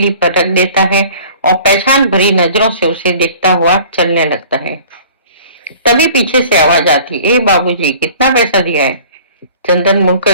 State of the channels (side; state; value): both; inverted; correlation -0.48